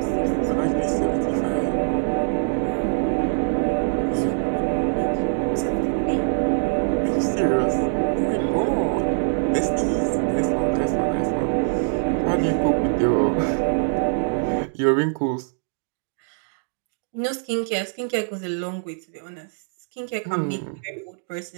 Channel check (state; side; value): silent; left; 59 dB below the other